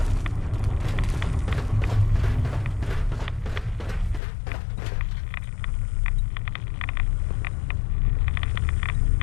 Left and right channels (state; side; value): drops out; right; at 4.2 s